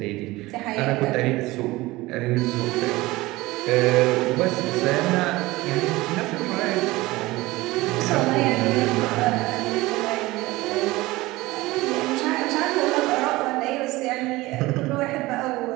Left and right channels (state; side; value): quieter; left; 19.8 dB